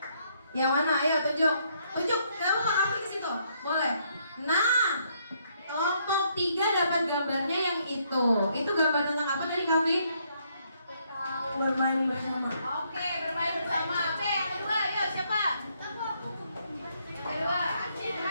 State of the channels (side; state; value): both; inverted; correlation -0.72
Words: Yang mana? Ayo tunjuk. Tunjuk. Kamu kamu ke situ. Boleh. Nah, kelompok 3 dapat gambarnya yang itu. Itu gambar tentang apa tadi, Kavi? Bermain bersama. Oke, bermain bersama. Oke, yang kedua, yuk siapa? Yang kedua.